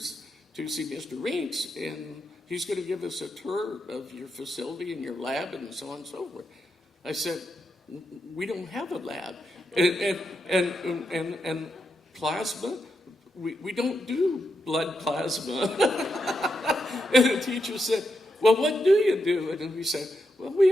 see Mr. Reitz, and he's going to give us a tour of your facility and your lab and so on and so forth. I said, we don't have a lab. And plasma, we don't do blood plasma. And the teacher said, well, what do you do? And we said, well, we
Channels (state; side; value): normal; both; correlation 0.84